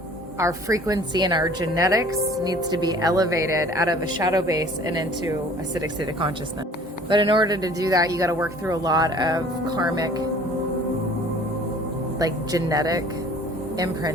our frequency and our genetics needs to be elevated out of a shadow base and into a acidic state of consciousness. But in order to do that, you got to work through a lot of karmic, like genetic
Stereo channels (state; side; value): normal; both; correlation 0.50